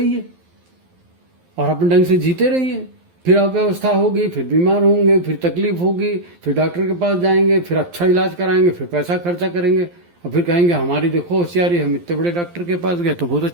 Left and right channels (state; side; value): late; left; 12 ms